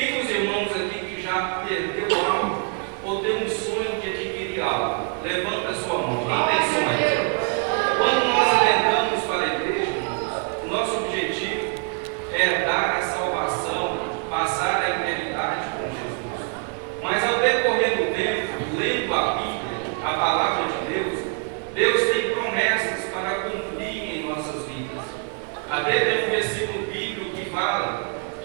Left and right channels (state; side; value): quieter; left; 37.6 dB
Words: dos irmãos aqui que já perdeu algo ou tem um sonho de adquirir algo? Levanta a sua mão. Quem tem sonho? Quando nós adentramos para a igreja, irmãos, o nosso objetivo é dar a salvação, passar a eternidade com Jesus. Mas ao decorrer do tempo, lendo a Bíblia, a palavra de Deus, Deus tem promessas para cumprir em nossas vidas. Até tem um versículo bíblico que fala